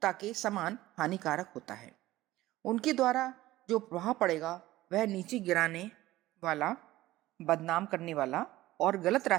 के समान हानिकारक होता है। उनके द्वारा जो प्रभाव पड़ेगा वह नीचे गिराने वाला, बदनाम करने वाला और गलत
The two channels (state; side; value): quieter; left; 16.6 dB